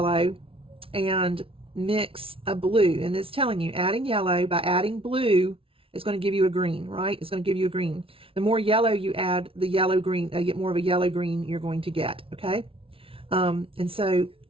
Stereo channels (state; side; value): late; left; 0.26 ms